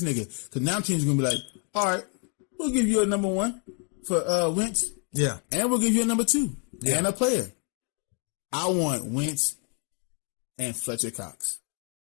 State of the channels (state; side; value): quieter; right; 39.8 dB